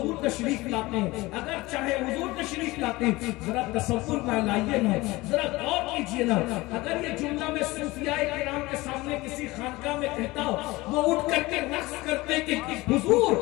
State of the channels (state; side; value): quieter; right; 20.7 dB